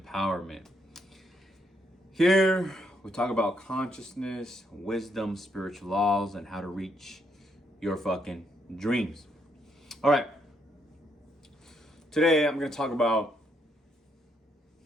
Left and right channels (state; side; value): normal; both; correlation 0.75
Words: Here, we talk about consciousness, wisdom, spiritual laws, and how to reach your fucking dreams. All right. Today, I'm going to talk about